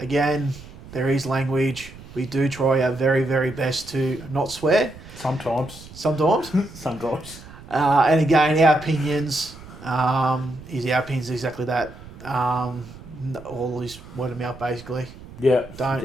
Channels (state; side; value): noise; right; rumble, 17 dB below the sound